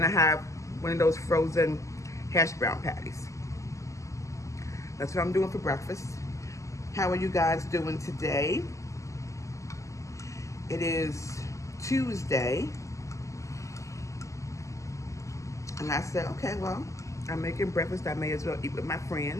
I have one of those frozen hash brown patties. That's what I'm doing for breakfast. How are you guys doing today? It is Tuesday. And I said, okay, well, I'm making breakfast. I may as well eat with my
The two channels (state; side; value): late; right; 0.15 ms